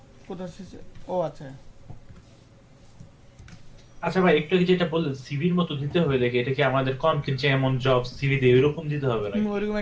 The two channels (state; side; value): identical; both; correlation 1.00